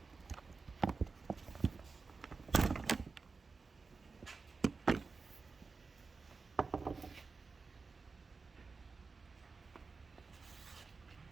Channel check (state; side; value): quieter; left; 4.4 dB